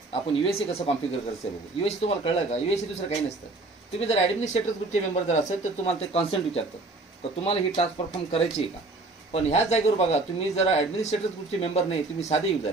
आपण युएससी कसं कॉन्फिगर करायचं बघू. युएससी तुम्हाला कळलं का, युएससी दुसरं काही नसतं. तुम्ही जर ॲडमिनिस्ट्रेटर ग्रुपचे मेंबर जर असेल तर तुम्हाला ते कॉन्सेंट विचारतं, तर तुम्हाला ही टास्क परफॉर्म करायची आहे का. पण ह्याच जागेवर बघा तुम्ही जर ॲडमिनिस्ट्रेटर ग्रुपचे मेंबर नाही, तुम्ही साधे युजर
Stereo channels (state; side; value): quieter; left; 3.1 dB